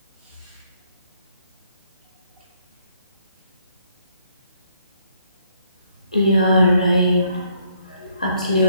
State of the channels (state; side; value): inverted; both; correlation -0.69